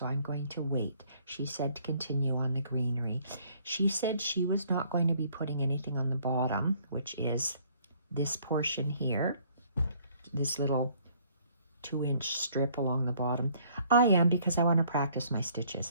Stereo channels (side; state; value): both; inverted; correlation -0.62